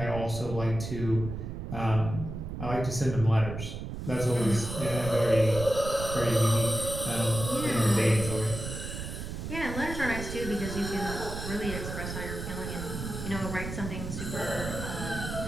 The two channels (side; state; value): right; noise; rumble, 7 dB below the sound